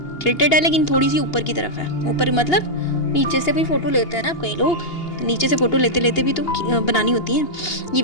टिल्टेड है, लेकिन थोड़ी सी ऊपर की तरफ है। ऊपर मतलब नीचे से भी फ़ोटो लेते हैं ना कई लोग, तो नीचे से फ़ोटो लेते लेते भी तो बनानी होती है। ये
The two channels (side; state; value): right; late; 2.8 ms